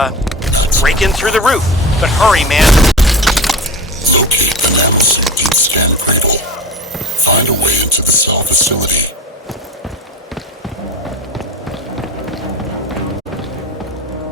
break in through the roof. But hurry, man. Locate the nanosuit deep scan cradle. Find a way into the cell facility.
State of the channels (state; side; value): normal; both; correlation 0.31